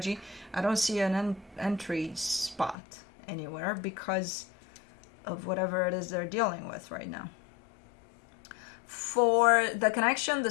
I don't see an entry spot anywhere because of whatever it is they're dealing with right now. For the connection, the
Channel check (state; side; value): drops out; right; at 2.8 s